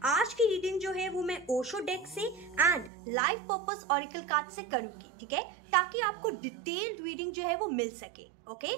आज की रीडिंग जो है वो मैं ओशो डेक से and life purpose oracle card से करूंगी, ठीक है, ताकि आपको डिटेल्ड रीडिंग जो है वो मिल सके। Okay,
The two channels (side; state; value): left; drops out; at 2.9 s